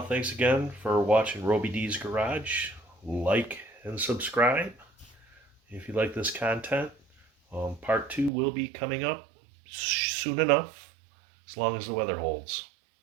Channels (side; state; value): left; drops out; at 8.3 s